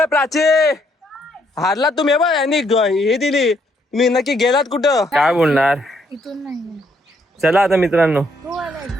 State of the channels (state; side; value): normal; both; correlation 0.71